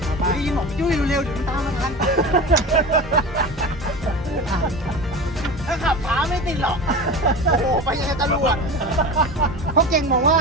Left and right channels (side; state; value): both; normal; correlation 0.30